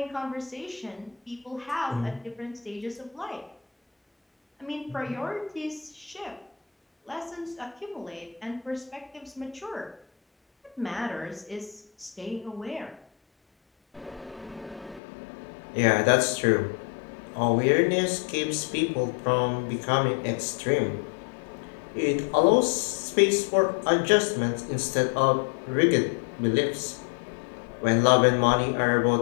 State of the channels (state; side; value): drops out; right; at 15.0 s